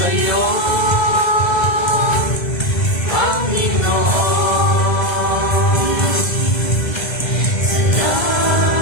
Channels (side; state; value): right; late; 1.2 ms